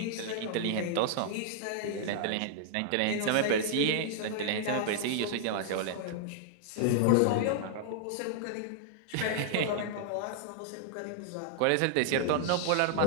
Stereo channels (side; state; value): both; different; correlation -0.01